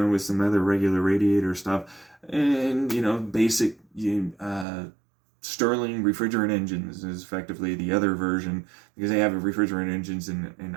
some other regular radiator stuff. And, basic Stirling refrigerant engines is effectively the other version, because they have refrigerant engines in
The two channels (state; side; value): drops out; left; at 4.7 s